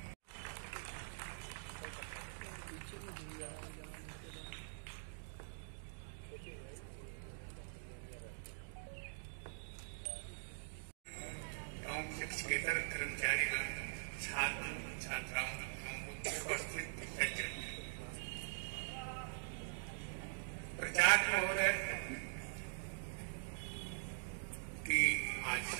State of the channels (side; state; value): left; silent; digital silence